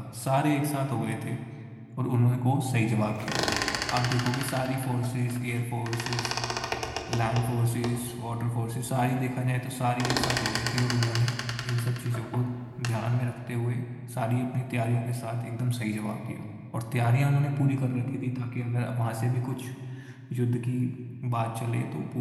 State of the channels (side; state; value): both; identical; correlation 1.00